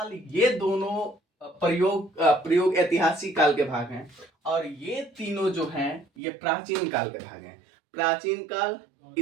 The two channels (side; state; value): left; drops out; at 6.1 s